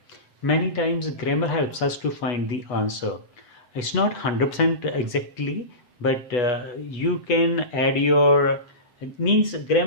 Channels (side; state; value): right; late; 8.2 ms